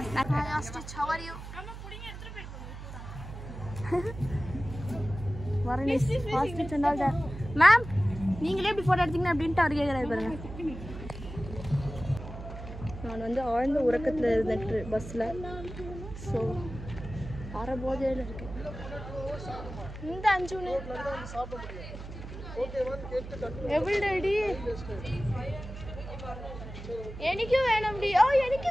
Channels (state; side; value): noise; right; hum, 11 dB below the sound